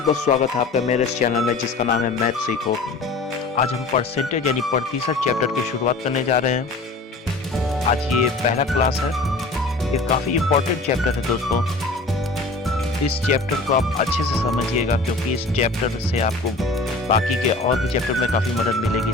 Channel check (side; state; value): right; quieter; 3.4 dB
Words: बहुत स्वागत है आपका मेरे इस चैनल में जिसका नाम है मैथ सीखो। आज हम परसेंटेज यानी प्रतिशत चैप्टर की शुरुआत करने जा रहे हैं। आज ये पहला क्लास है। ये काफ़ी इम्पोर्टेंट चैप्टर है दोस्तों। इस चैप्टर को आप अच्छे से समझिएगा क्योंकि इस चैप्टर से आपको बाकी के और भी चैप्टर में काफ़ी मदद मिलेगी,